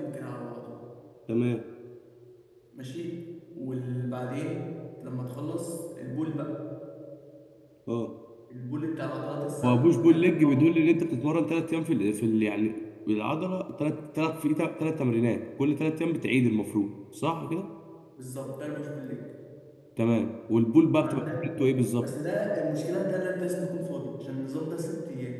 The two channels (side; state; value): both; identical; correlation 1.00